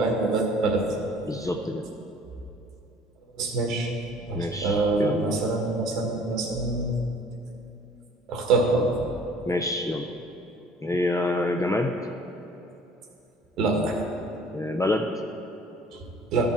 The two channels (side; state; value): both; normal; correlation 0.52